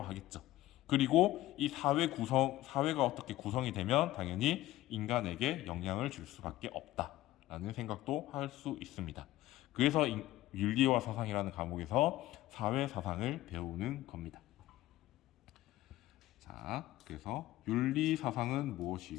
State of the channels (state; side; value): quieter; right; 16.0 dB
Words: 그리고 이 사회가 어떻게 구성이 되면 당연히 인간에게 영향을 줄 수밖에 없다라는 생각도 할 수 있습니다. 그래서 윤리와 사상이라는 과목에서 사회 사상을 배우는 겁니다. 자, 그래서 윤리 사상은